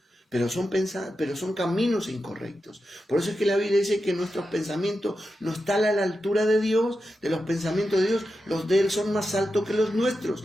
pero son caminos incorrectos. Por eso es que la Biblia dice que nuestros pensamientos no están a la altura de Dios, de los pensamientos de Dios. Los de Él son más altos que los nuestros.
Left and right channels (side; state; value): both; normal; correlation 0.90